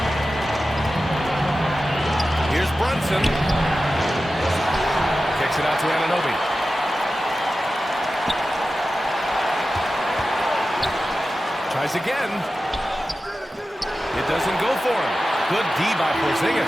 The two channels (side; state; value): both; normal; correlation 0.94